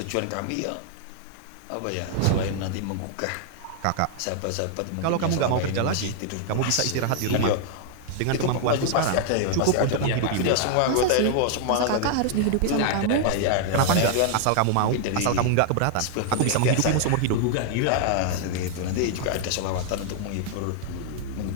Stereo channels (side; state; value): both; different; correlation 0.00